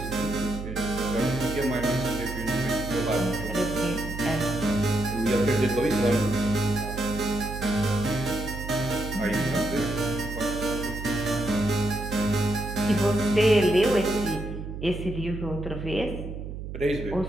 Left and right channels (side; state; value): right; noise; hum, 8 dB below the sound